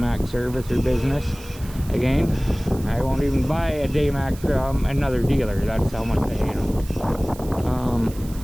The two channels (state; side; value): noise; right; hiss, 19 dB below the sound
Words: service or business again. I won't even buy a Daymak from another dealer. That's how much I hate them.